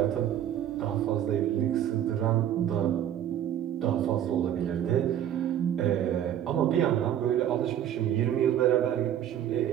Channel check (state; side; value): quieter; left; 10.7 dB